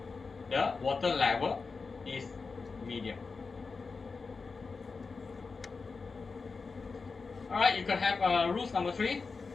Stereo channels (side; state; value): right; quieter; 4.5 dB